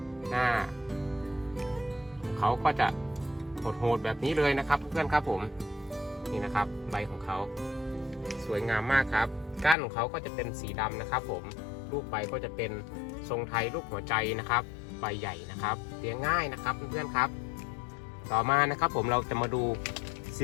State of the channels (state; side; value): drops out; right; at 9.8 s